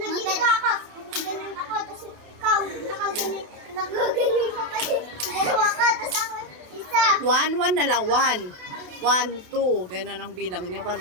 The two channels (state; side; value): late; left; 28 ms